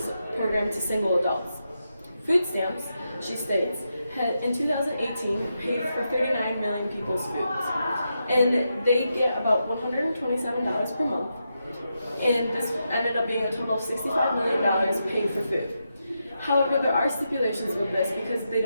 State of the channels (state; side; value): inverted; both; correlation -0.85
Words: program to single adults. Food stamps, she states, had in 2018 paid for 39 million people's foods, and they get about $127 per month, and this ended up being a total of $65 million paid for food. However, there are stipulations with this because they